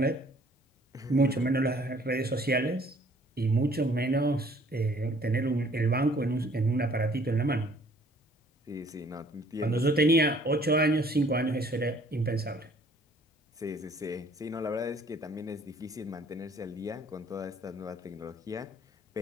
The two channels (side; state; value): both; normal; correlation 0.57